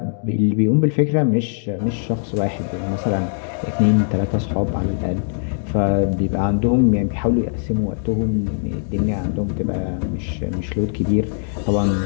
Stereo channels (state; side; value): silent; right; digital silence